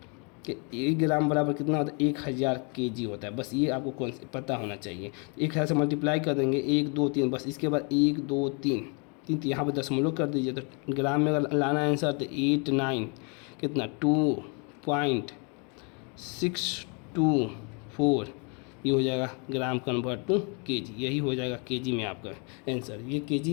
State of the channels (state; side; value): quieter; right; 34.8 dB